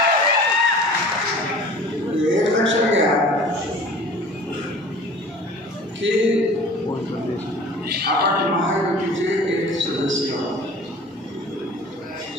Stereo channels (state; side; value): normal; both; correlation 0.44